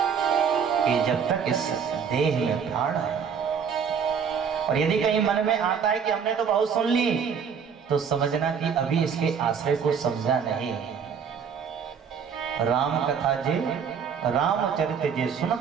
कि जब तक इस देह में प्राण है। और यदि कहीं मन में आता है कि हमने तो बहुत सुन ली, तो समझना कि अभी इसके आश्रय को समझा नहीं। राम कथा जे रामचरित जे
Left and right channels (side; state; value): left; quieter; 6.9 dB